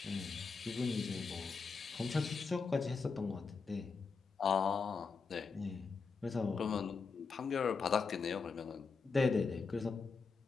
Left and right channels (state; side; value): quieter; right; 4.9 dB